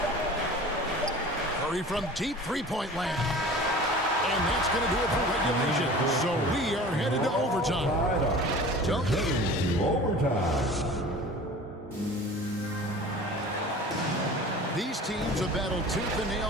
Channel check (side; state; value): both; normal; correlation 0.41